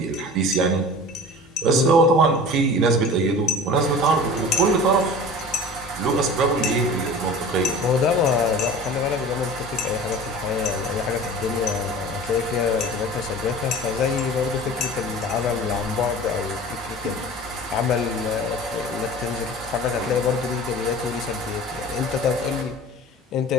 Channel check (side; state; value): both; normal; correlation 0.39